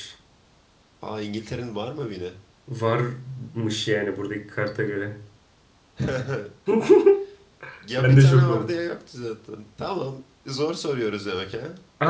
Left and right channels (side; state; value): both; identical; correlation 1.00